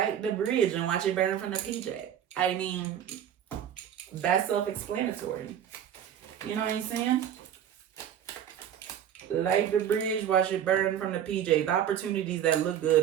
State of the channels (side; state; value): left; quieter; 9.7 dB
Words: the bridge and watch it burn from the PJ. I mean, that's self-explanatory. You know what I'm saying? Light the bridge, watch it burn from the PJ. The opportunities that look